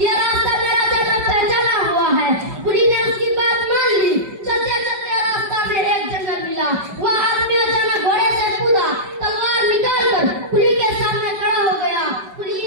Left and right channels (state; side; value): late; left; 5.2 ms